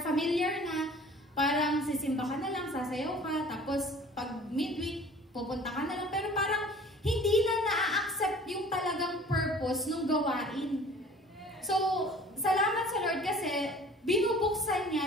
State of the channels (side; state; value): both; normal; correlation 0.48